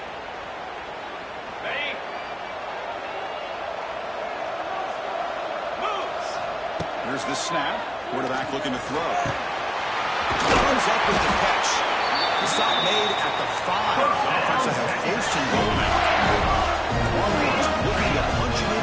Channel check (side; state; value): both; identical; correlation 1.00